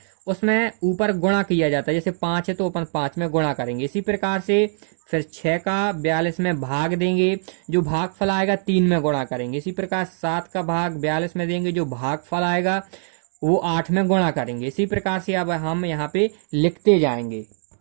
उसमें ऊपर गुणा किया जाता है। जैसे 5 है तो अपन 5 में गुणा करेंगे। इसी प्रकार से फिर 6 का 42 में भाग देंगे, जो भाग फल आएगा 3 में गुणा करेंगे। इसी प्रकार 7 का भाग 42 में देंगे, जो भाग फल आएगा वो 8 में गुणा करेंगे। इसी प्रकार से अब हम यहाँ पे लिखते जाएंगे।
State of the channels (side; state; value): left; silent; digital silence